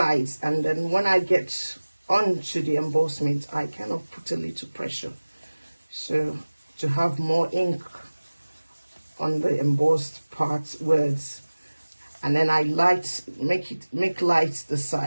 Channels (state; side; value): inverted; both; correlation -1.00